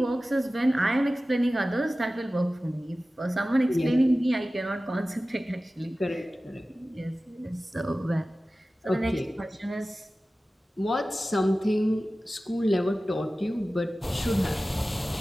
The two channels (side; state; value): both; normal; correlation 0.96